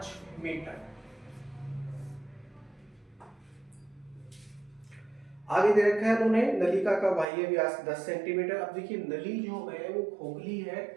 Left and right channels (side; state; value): left; drops out; at 7.2 s